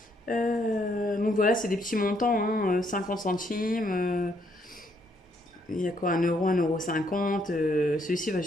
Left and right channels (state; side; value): normal; both; correlation 0.71